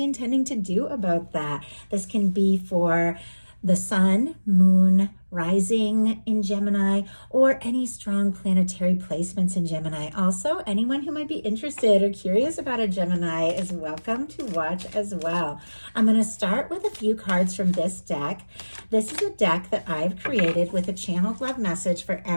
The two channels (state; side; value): inverted; both; correlation -1.00